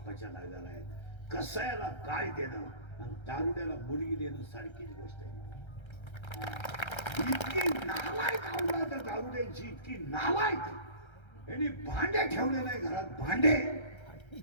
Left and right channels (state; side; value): late; right; 1.3 ms